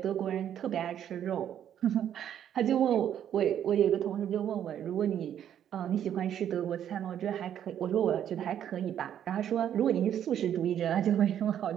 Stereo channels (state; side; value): quieter; left; 10.0 dB